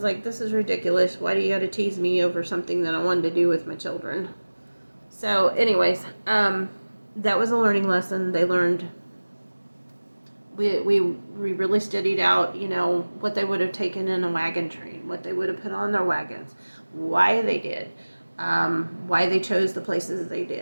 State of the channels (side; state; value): both; inverted; correlation -1.00